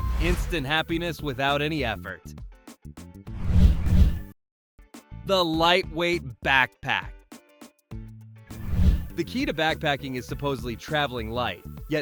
Instant happiness without any effort. The lightweight backpack. The key to backpacking is supposedly traveling light,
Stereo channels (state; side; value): identical; both; correlation 1.00